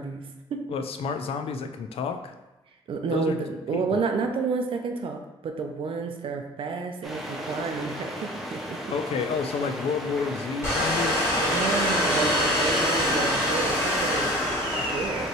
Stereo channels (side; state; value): both; normal; correlation 0.41